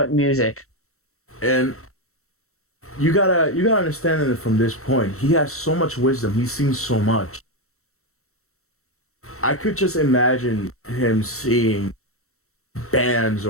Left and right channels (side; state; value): right; late; 0.63 ms